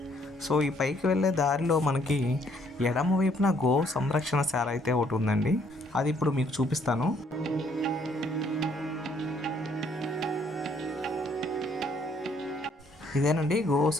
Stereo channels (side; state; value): both; normal; correlation 0.66